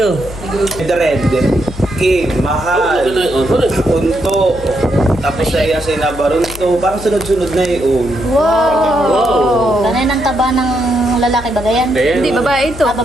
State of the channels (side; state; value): left; noise; hum, 14 dB below the sound